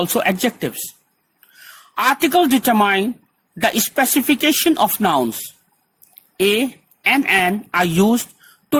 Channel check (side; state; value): both; identical; correlation 1.00